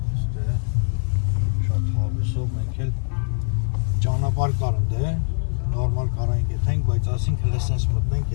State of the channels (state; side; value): silent; right; 55 dB below the other